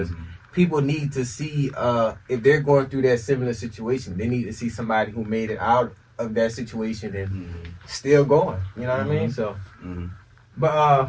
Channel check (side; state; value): both; identical; correlation 1.00